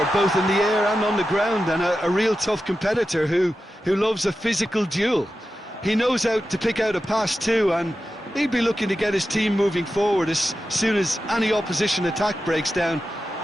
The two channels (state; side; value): normal; both; correlation 0.92